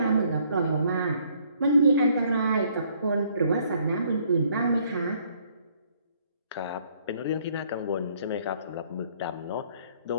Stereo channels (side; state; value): both; inverted; correlation -0.65